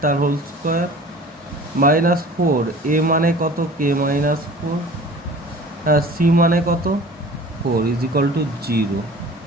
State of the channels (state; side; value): normal; both; correlation 0.43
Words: তার হোল স্কোয়ার মাইনাস 4, এ মানে কত k মাইনাস 4, হ্যাঁ সি মানে কত 4 ইজ ইকুয়াল টু 0।